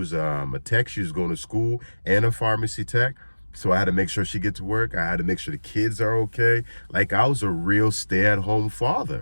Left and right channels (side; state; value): both; inverted; correlation -1.00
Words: a tech. She was going to school and a pharmacy tech. So I had to make sure she get to work. I had to make sure the kids are okay. Like, I was a real stay-at-home